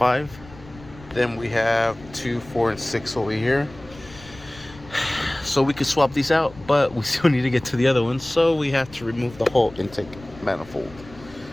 Then we have 2, 4, and 6 over here. So we could swap these out, but we still need to get to the other ones, so we have to remove the whole intake manifold.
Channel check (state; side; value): noise; left; rumble, 20 dB below the sound